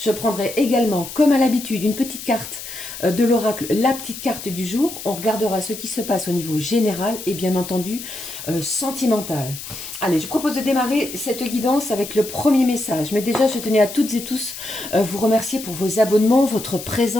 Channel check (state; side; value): noise; left; hiss, 11 dB below the sound